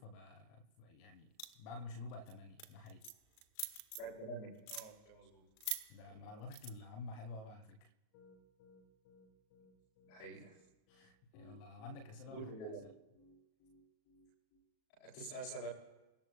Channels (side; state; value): right; late; 37 ms